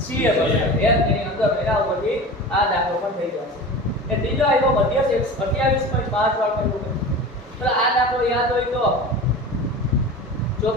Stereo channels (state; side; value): normal; both; correlation 0.33